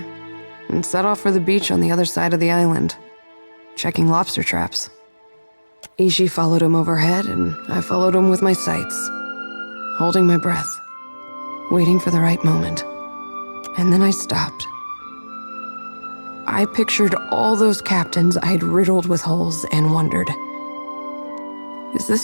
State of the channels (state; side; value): inverted; both; correlation -1.00